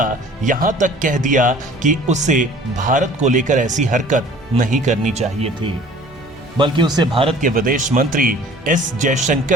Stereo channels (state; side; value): normal; both; correlation 0.49